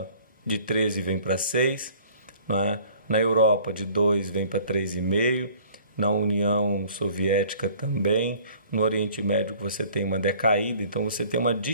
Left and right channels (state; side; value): inverted; both; correlation -0.52